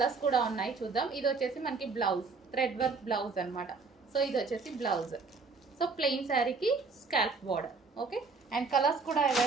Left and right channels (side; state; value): left; quieter; 4.4 dB